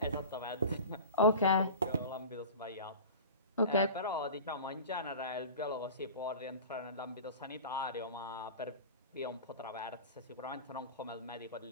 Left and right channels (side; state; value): both; inverted; correlation -0.34